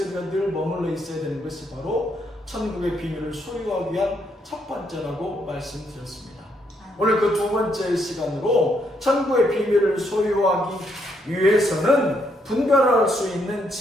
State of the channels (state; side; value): normal; both; correlation 0.74